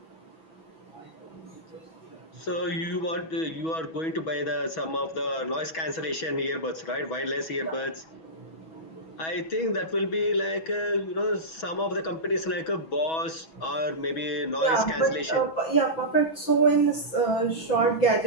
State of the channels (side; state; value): right; late; 6.2 ms